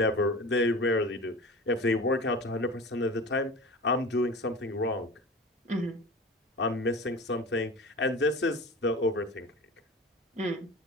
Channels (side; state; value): both; normal; correlation 0.35